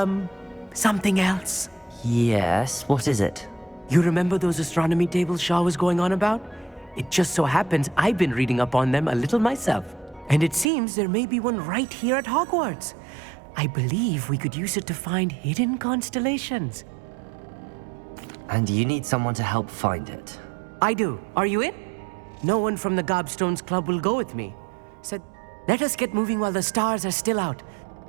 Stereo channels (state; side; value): drops out; left; at 10.7 s